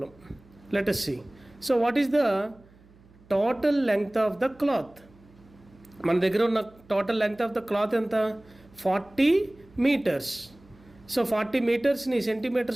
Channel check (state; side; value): noise; right; hum, 27 dB below the sound